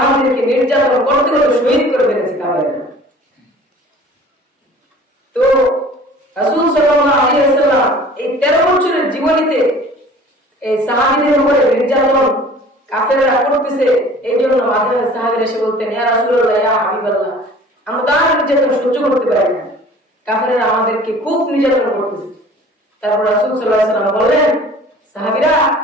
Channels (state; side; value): normal; both; correlation 0.47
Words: নির্যাতন করতে করতে শহীদ করে ফেলেছে কাফেররা। তো রাসূল সাল্লাল্লাহু আলাইহি ওয়াসাল্লাম এই 13 বছরের জীবনীতে এই সাহাবীদের উপরে নির্যাতন কাফেররা করতেছে, এই জন্য মাঝে মাঝে সাহাবীরা এসে বলতেন, ইয়া রাসূলুল্লাহ, ইয়া হাবিবাল্লাহ, আমরা তার নির্যাতন সহ্য করতে পারি না, কাফেররা আমাদেরকে খুব নির্যাতন করতেছে। তারপর রাসূল সাল্লাল্লাহু আলাইহি ওয়াসাল্লাম বললেন, সাহাবীরা,